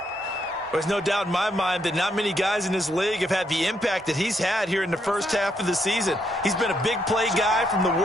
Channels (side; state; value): both; normal; correlation 0.76